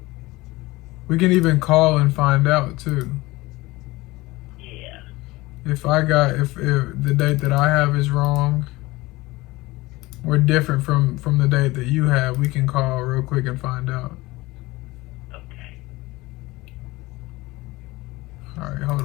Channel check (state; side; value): quieter; right; 20.5 dB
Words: We can even call and find out too. Yeah. If the date that I have is wrong, or different from the date that you have, we can call real quick and find out. Okay. All right, hold